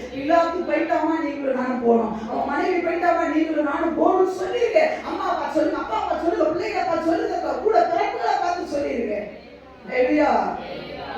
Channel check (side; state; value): both; identical; correlation 1.00